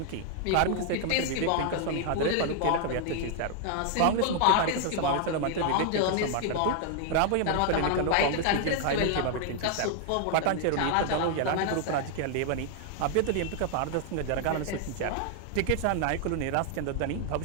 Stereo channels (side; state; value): both; different; correlation 0.00